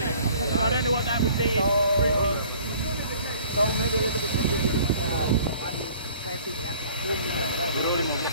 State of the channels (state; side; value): inverted; both; correlation -0.52